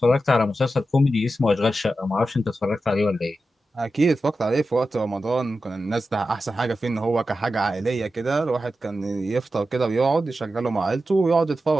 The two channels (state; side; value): normal; both; correlation 0.91